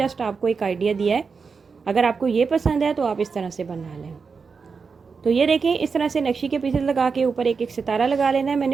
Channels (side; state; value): left; quieter; 5.2 dB